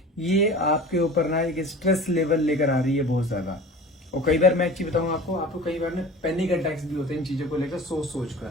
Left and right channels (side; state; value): both; normal; correlation 0.38